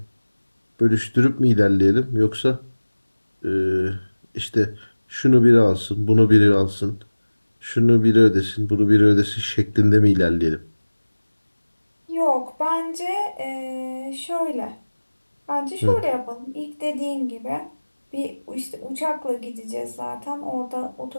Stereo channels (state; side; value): inverted; both; correlation -1.00